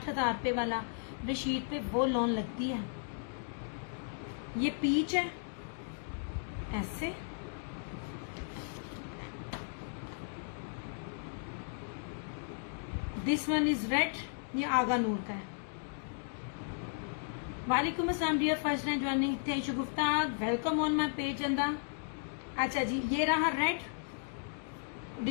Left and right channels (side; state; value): right; silent; digital silence